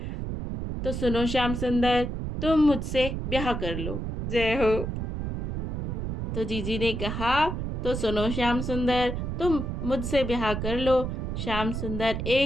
तो सुनो श्याम सुंदर, तुम मुझसे ब्याह कर लो। जय हो। तो जीजी ने कहा, तो सुनो श्याम सुंदर, तुम मुझसे ब्याह कर लो। श्याम सुंदर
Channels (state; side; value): noise; right; rumble, 3 dB below the sound